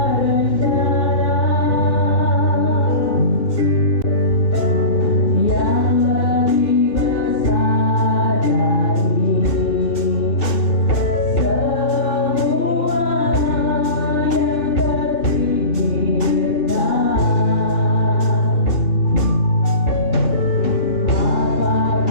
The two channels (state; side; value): late; right; 3.0 ms